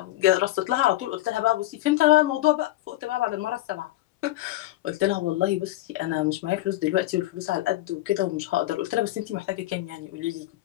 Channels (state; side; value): quieter; right; 16.4 dB